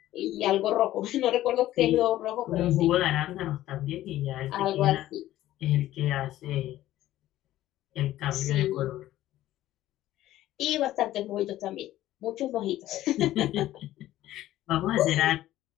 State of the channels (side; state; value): right; quieter; 14.3 dB